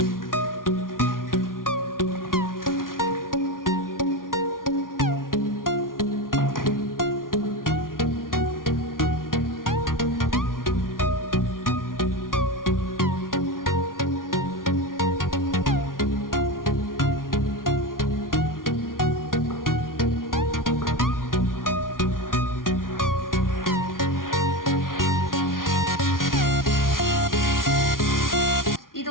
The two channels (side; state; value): right; late; 0.91 ms